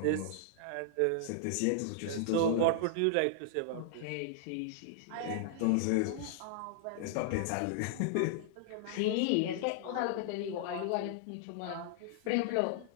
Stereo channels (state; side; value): different; both; correlation -0.01